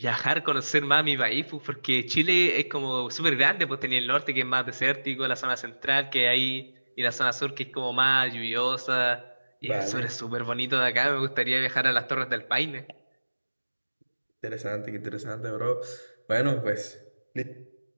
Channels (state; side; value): inverted; both; correlation -1.00